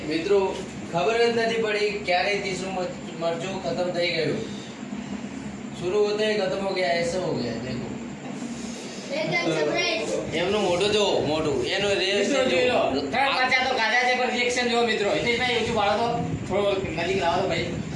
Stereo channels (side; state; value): both; identical; correlation 1.00